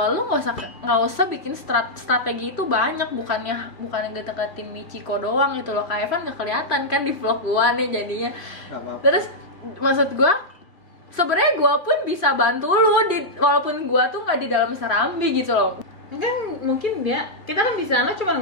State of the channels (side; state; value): right; late; 2.5 ms